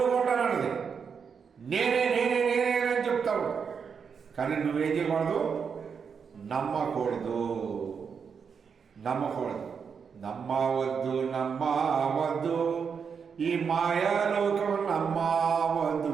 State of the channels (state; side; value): quieter; left; 6.3 dB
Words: నేనే అని చెప్తావు. కానీ నువ్వేం చేయకూడదు? నమ్మకూడదు. నమ్మవద్దు ఈ మాయాలోకం